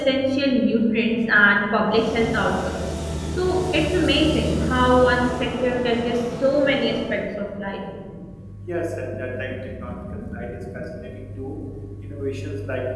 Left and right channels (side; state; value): both; identical; correlation 1.00